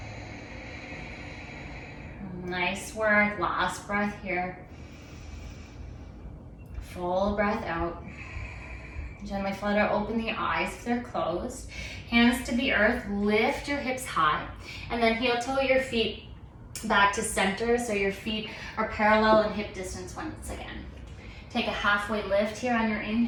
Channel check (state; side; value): identical; both; correlation 1.00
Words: Nice work, last breath here. Full breath out. Gently flutter open the eyes if they're closed. Hands to the earth, lift your hips high, and then heel toe your feet back to center so your feet are parallel in hip distance once again. Take a halfway lift here on your